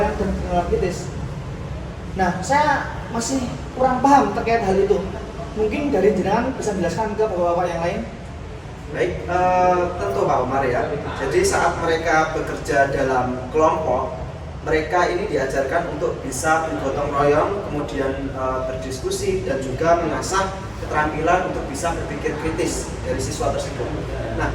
dan pengenalan kritis. Nah, saya masih kurang paham terkait hal itu. Mungkin dari jenengan bisa menjelaskan ke bapak-bapak yang lain. Baik, tentu Pak Umar ya. Jadi saat mereka bekerja dalam kelompok, mereka ini diajarkan untuk bisa bergotong royong, kemudian berdiskusi dan juga mengasah keterampilan untuk bisa berpikir kritis dari siswa tersebut. Nah,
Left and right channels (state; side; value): identical; both; correlation 1.00